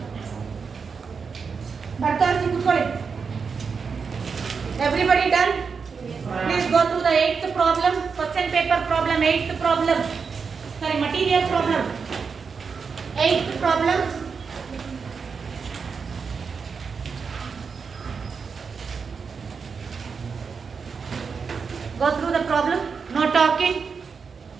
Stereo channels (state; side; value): quieter; left; 5.5 dB